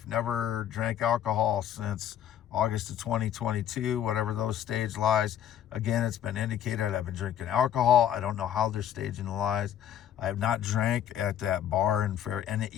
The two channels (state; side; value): quieter; right; 10.4 dB